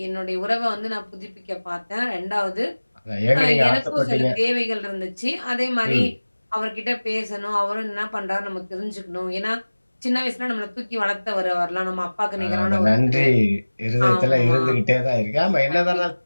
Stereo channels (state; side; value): inverted; both; correlation -1.00